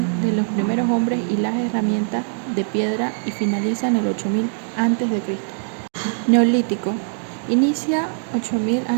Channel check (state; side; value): silent; left; digital silence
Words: de los primeros hombres y las herramientas de piedra y finaliza en el 8000 antes de Cristo. Neolítico. Inicia 8000